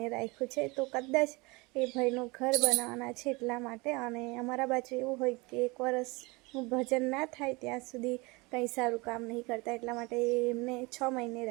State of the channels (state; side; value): quieter; left; 25.4 dB